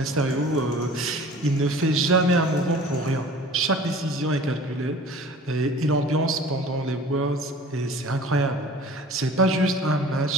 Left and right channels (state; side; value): normal; both; correlation 0.45